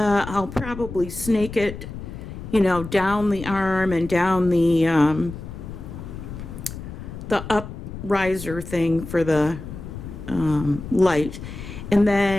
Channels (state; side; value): noise; left; rumble, 10 dB below the sound